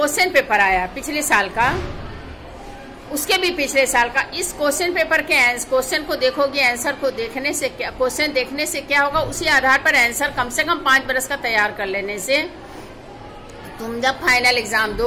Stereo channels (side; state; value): both; identical; correlation 1.00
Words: पेपर आया पिछले साल का, उसके भी पिछले साल का, इस क्वेश्चन पेपर के क्वेश्चन को देखोगे, आंसर को देखने से क्या, क्वेश्चन देखने से क्या होगा, उसी आधार पर आंसर कम से कम 5 बरस का तैयार कर लेने से तुम जब फाइनल एग्जाम